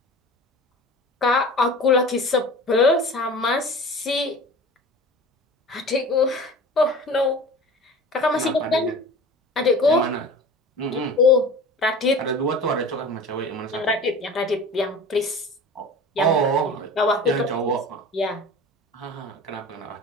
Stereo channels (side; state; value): both; normal; correlation 0.38